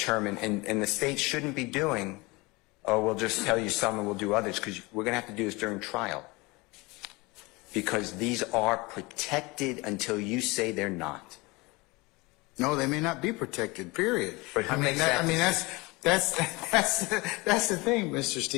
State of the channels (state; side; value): quieter; right; 24.4 dB